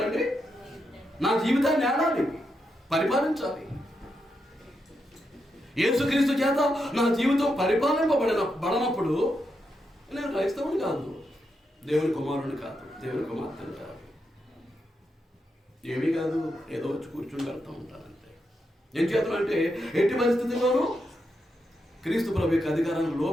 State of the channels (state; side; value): normal; both; correlation 0.84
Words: నా జీవితాన్ని ఆడాలి, పరిపాలించాలి. యేసుక్రీస్తు చేత నా జీవితం పరిపాలింపబడినప్పుడు నేను క్రైస్తవుని కాదు, దేవుని కుమారుని కాదు, దేవుని కుమార్తెను కాదు, ఏమీ కాదు, ఏదో వచ్చి కూర్చుని వెళ్తూ ఉంటానంతే. ఏం చేతనంటే ఎట్టి పరిస్థితుల్లోనూ క్రీస్తు ప్రభు యొక్క అధికారానికి